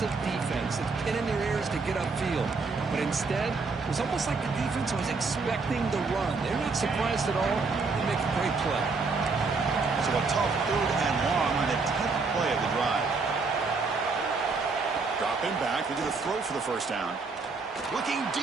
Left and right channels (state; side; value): quieter; left; 4.3 dB